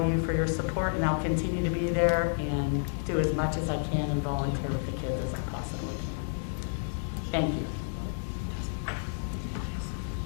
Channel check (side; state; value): right; silent; digital silence